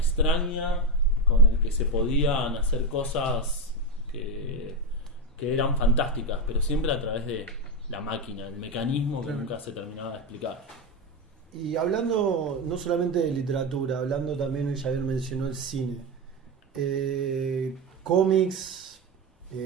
con el que se podían hacer cosas que eran fantásticas, pero siempre a través de la máquina, el mecanismo que nunca se terminaba de explicar. Y hablando no solamente de literatura, hablando también, ya bien mencionó el cine, cómics,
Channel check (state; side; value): normal; both; correlation 0.13